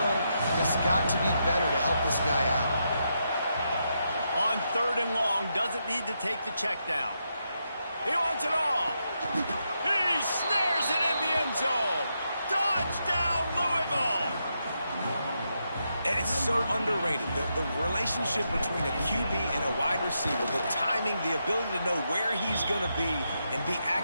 has got to be better to help this guy out. On 3rd and long, doesn't need to take the check down. He wants it all. He snares it in the end zone. Touchdown, Louisville! And it's so underrated. The relationship between a QB and a wide receiver, the timing, the ability to know where he's going to be and be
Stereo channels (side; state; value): both; inverted; correlation -0.83